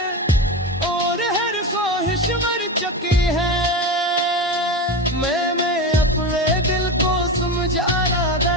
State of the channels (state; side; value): normal; both; correlation 0.21